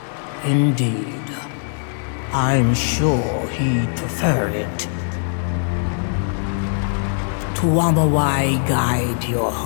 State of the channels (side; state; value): right; silent; digital silence